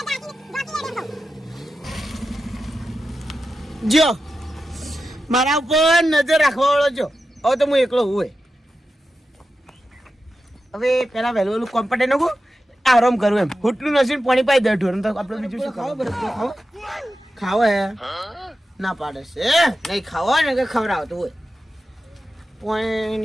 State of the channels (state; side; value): normal; both; correlation 0.91